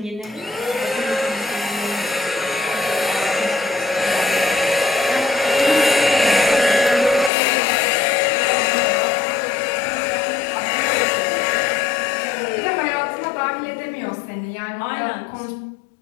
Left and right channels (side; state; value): right; drops out; at 7.3 s